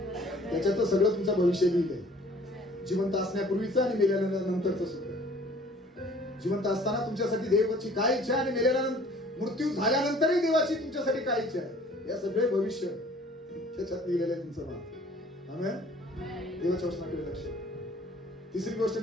त्याच्यात सगळं तुमचं भविष्य लिहिलंय. जिवंत असण्यापूर्वीचं आणि मेल्यानंतरचं सुद्धा. जिवंत असताना तुमच्यासाठी देवाची काय इच्छा आणि मेल्यानंतर, मृत्यू झाल्यानंतरही देवाची तुमच्यासाठी काय इच्छा आहे या सगळे भविष्य त्याच्यात लिहिलेलं आहे तुमचं नाव. आमेन. देवाच्या वचनाकडे लक्ष. तिसरी गोष्ट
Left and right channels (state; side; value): normal; both; correlation 0.53